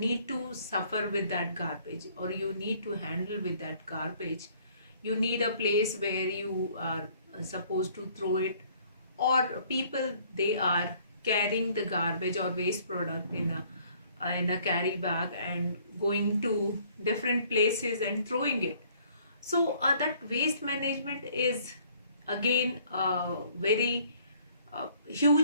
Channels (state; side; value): inverted; both; correlation -0.60